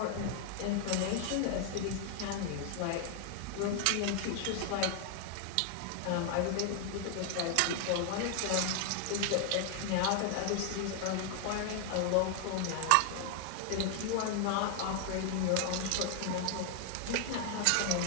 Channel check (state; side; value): different; both; correlation 0.00